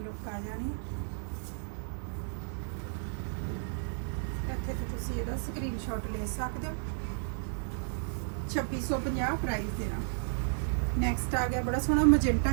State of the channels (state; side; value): silent; left; 56 dB below the other